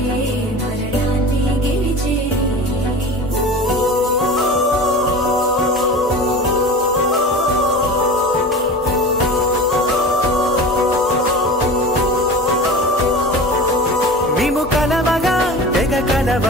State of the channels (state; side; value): normal; both; correlation 0.34